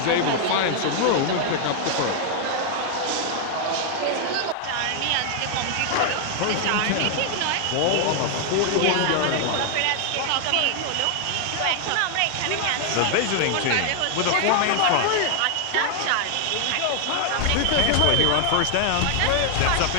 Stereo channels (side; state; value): both; different; correlation 0.00